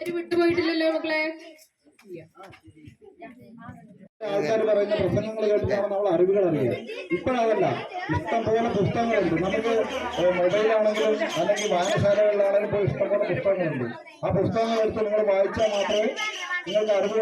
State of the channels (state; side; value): identical; both; correlation 1.00